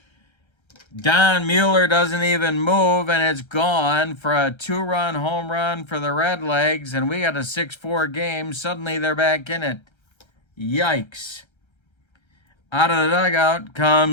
Don Mueller doesn't even move, and it's gone for a 2-run home run for the Redlegs, and we got a 6-4 game. Suddenly they're back in it. Yikes. Out of the dugout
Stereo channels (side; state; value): right; late; 1.3 ms